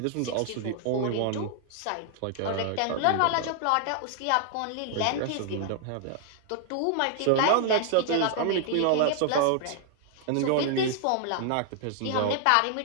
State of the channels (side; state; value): both; different; correlation -0.01